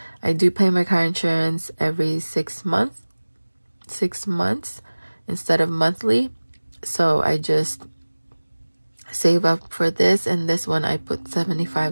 I do pay my car insurance every 6 months. 6 months instead of monthly. So I just save up for this, and this one I put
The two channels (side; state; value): both; inverted; correlation -1.00